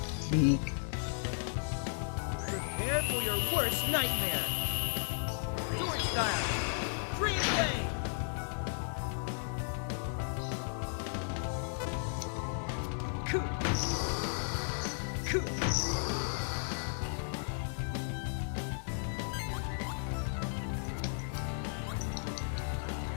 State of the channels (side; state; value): right; silent; digital silence